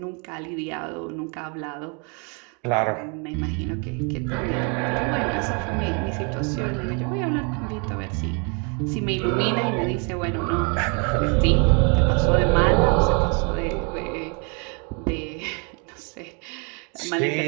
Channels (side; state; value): left; quieter; 34.9 dB